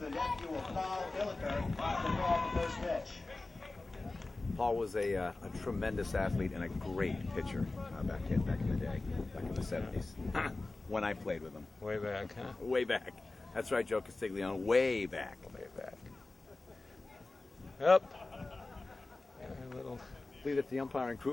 nephew of Paul Hilliker, to throw out the first pitch. Paul was a tremendous athlete and a great pitcher back in the day, back in the 70s, when I played with him. Way back, huh? Way back. That's right, Joe Castiglione. Way back. Way back. Up. A little. I believe it's the umpiring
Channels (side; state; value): right; quieter; 3.3 dB